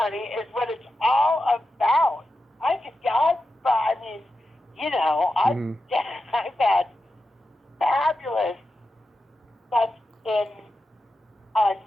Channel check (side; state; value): both; normal; correlation 0.90